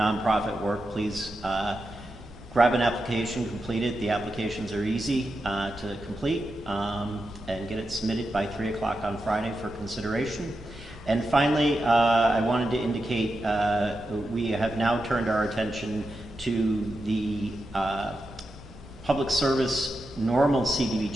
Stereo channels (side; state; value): right; noise; rumble, 23 dB below the sound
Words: work, please grab an application, complete it. The applications are easy to complete and get it submitted by 3 o'clock on Friday for consideration. And finally, I wanted to indicate we have now turned our attention to the Public Service Normal